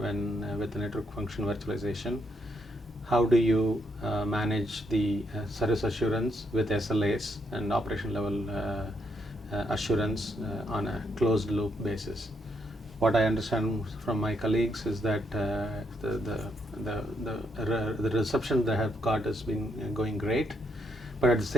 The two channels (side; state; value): both; normal; correlation 0.77